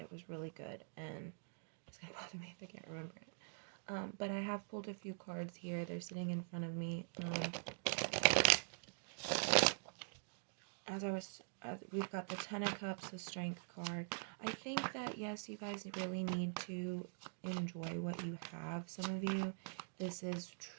it was really good, and it's going to bother me if I can't remember it. But I have pulled a few cards here. They're sitting in front of me. We've got the Ten of Cups, the Strength card. I think that, yes, you guys really need to enjoy what you have. Some of you, this is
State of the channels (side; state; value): left; silent; digital silence